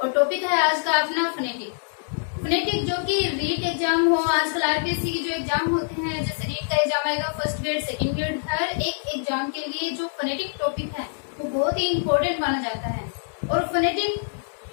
और topic है आज का अपना फोनेटिक। फोनेटिक जो कि रीट एग्जाम हो, आजकल आरपीएससी की जो एग्जाम होते हैं, जैसे रीट का एग्जाम आएगा, फर्स्ट ग्रेड, सेकंड ग्रेड, हर एक एग्जाम के लिए जो फोनेटिक टॉपिक है वो बहुत ही इम्पोर्टेंट माना जाता है। और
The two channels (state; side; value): silent; right; digital silence